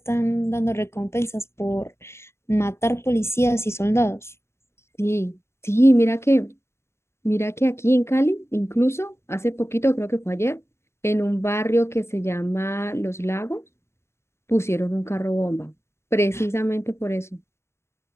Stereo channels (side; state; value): right; late; 0.13 ms